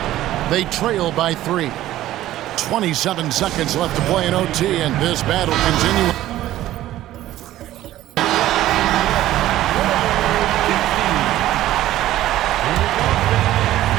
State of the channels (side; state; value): left; quieter; 14.3 dB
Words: They trail by 3. 27 seconds left to play in OT, and this battle continues.